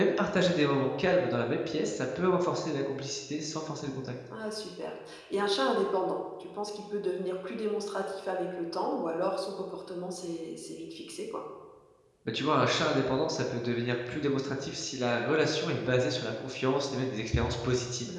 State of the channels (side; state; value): both; identical; correlation 1.00